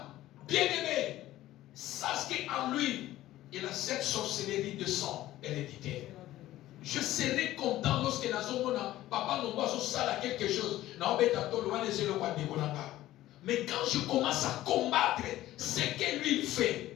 bien-aimé, sache qu'en lui, il a cette sorcellerie de sang héréditaire. Je serai content lorsque papa a quelque chose. Mais quand je commence à combattre ce que lui il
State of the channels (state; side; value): quieter; right; 15.0 dB